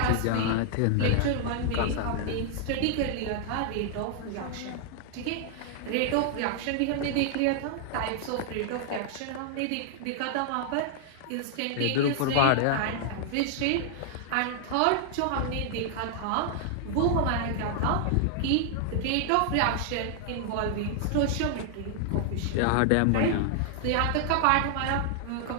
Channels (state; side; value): different; both; correlation 0.00